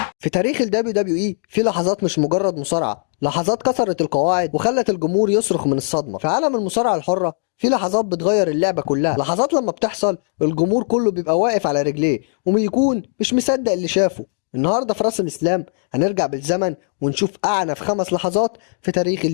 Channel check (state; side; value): silent; right; digital silence